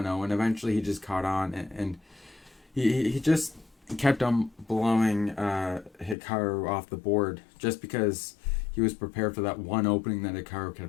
and eventually he just caught on, and he just kept on blowing Hikaru off the board just because he was prepared for that one opening that Hikaru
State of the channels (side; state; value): right; drops out; at 6.2 s